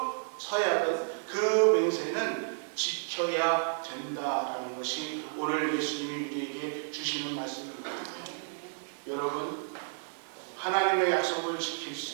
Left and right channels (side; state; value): left; silent; 57 dB below the other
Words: 서약은 그 맹세는 지켜야 된다라는 것이 오늘 예수님이 우리에게 주시는 말씀입니다. 여러분, 하나님의 약속을 지킬